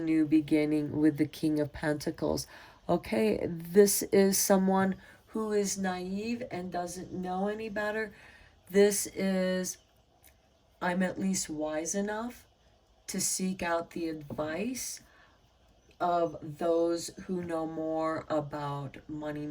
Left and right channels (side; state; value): both; identical; correlation 1.00